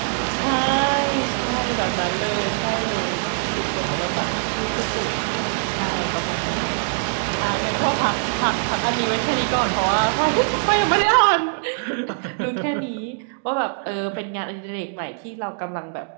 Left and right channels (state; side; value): silent; left; digital silence